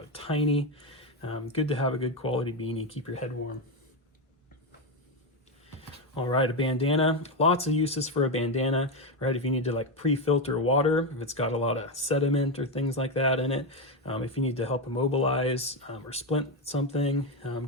tiny. Good to have a good quality beanie, keep your head warm. All right, a bandana, lots of uses for a bandana, right? If you need to like pre-filter water, if it's got a lot of sediment or things like that in it, if you need to help immobilize or splint something,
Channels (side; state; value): both; normal; correlation 0.10